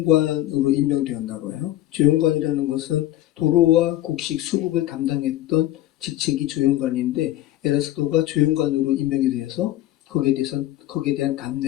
임명되었나 봐요. 조영관이라는 것은 도로와 곡식 수급을 담당했던 직책이 조영관인데 에라스도가 조영관으로 임명이 되어서 거기에 대한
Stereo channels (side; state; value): right; quieter; 13.9 dB